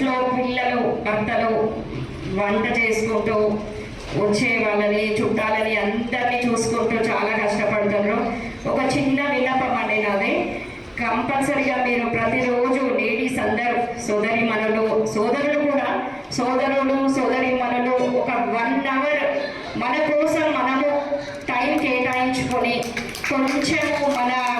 పిల్లలు, భర్తలు వంట చేసుకుంటూ వచ్చే వాళ్ళని, చుట్టాలని అందరినీ చూసుకుంటూ చాలా కష్టపడుతున్నారు. ఒక చిన్న విన్నపం అండి నాది, కంపల్సరిగా మీరు ప్రతిరోజు లేడీస్ అందరూ సోదరులు కూడా సోదరి మనలు ఒక 1 hour మన కోసం మనము టైం కేటాయించుకొని కొంచెము మన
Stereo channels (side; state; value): both; identical; correlation 1.00